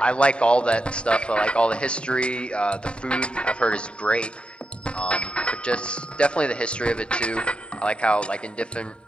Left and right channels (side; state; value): right; late; 0.053 ms